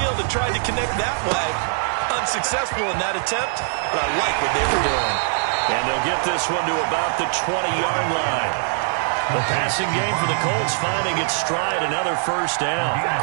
and tried to connect that way. Unsuccessful in that attempt, but I like what they were doing. And they'll get this one to about the 20-yard line. The passing game for the Colts finding its stride, another first down.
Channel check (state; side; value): silent; left; digital silence